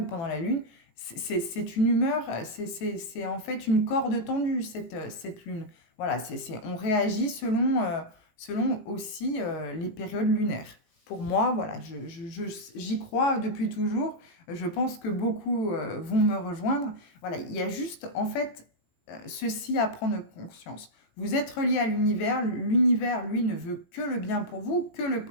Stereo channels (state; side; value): late; right; 18 ms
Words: pendant la lune. C'est une humeur, c'est en fait une corde tendue cette lune. Voilà, on réagit selon aussi les périodes lunaires. Pour moi, voilà, j'y crois depuis toujours. Je pense que beaucoup vont me rejoindre. Voilà, il y a juste, en fait, ceci à prendre conscience. Vous êtes relié à l'univers. L'univers, lui, ne veut que le bien pour vous, que le